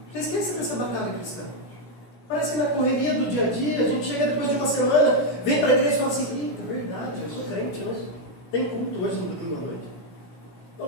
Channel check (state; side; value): late; right; 17 ms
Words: Você esquece dessa batalha cristã. Parece que na correria do dia a dia, a gente chega depois de uma semana, vem para a igreja e fala assim, eita, verdade, eu sou crente, mas tem culto hoje no domingo à noite.